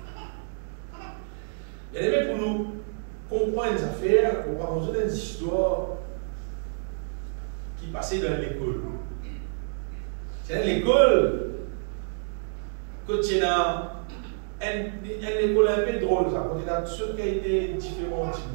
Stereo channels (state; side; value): silent; left; digital silence